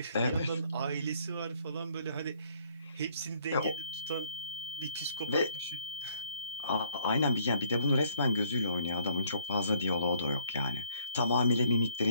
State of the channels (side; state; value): both; inverted; correlation -0.65